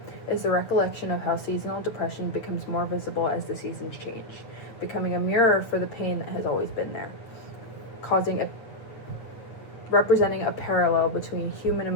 is the recollection of how seasonal depression becomes more visible as the seasons change, becoming a mirror for the pain that has always been there, representing a parallel between human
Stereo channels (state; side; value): late; right; 8.6 ms